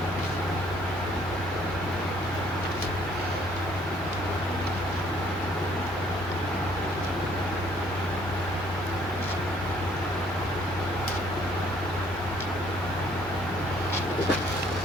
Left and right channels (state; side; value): normal; both; correlation 0.62